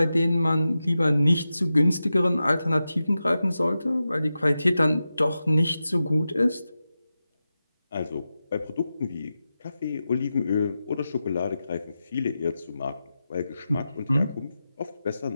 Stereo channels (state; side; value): inverted; both; correlation -0.92